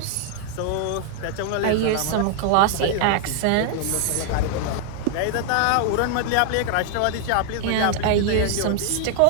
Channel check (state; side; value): different; both; correlation 0.00